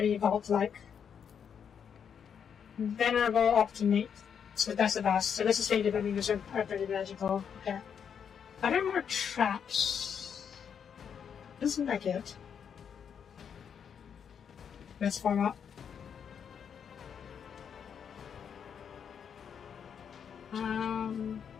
vault-like. Venerable Optimate. So that's the best. So this is stated that these are pretty magical. Okay. Are there more traps? Doesn't like it. Let's form up.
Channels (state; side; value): quieter; right; 7.5 dB